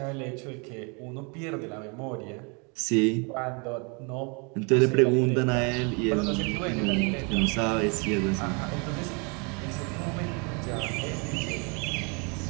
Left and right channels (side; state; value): left; quieter; 33.2 dB